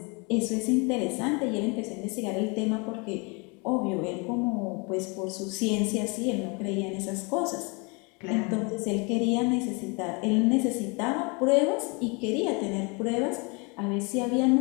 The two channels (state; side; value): quieter; right; 30.8 dB